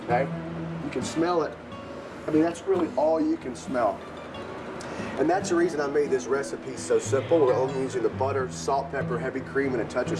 Okay. You can smell it. I mean, that's really all you can smell. And that's the reason I made this recipe so simple. We're only using the butter, salt, pepper, heavy cream, and a touch of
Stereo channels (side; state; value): both; identical; correlation 1.00